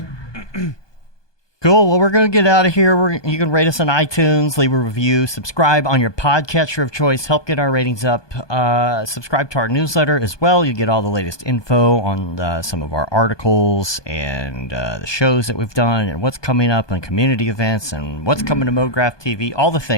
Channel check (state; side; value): late; right; 1.2 ms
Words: Cool. Well, we're going to get out of here. You can rate us on iTunes, leave a review, subscribe on your podcatcher of choice, help get our ratings up. Subscribe to our newsletter as well. You get all the latest info on some of our articles and the shows that we've done and what's coming up and community events and what's coming to Mograph TV, all the